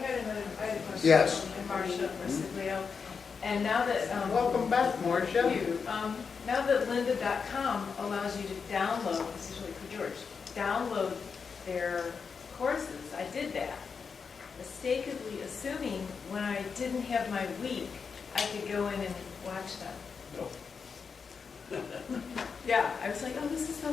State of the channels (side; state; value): right; quieter; 5.7 dB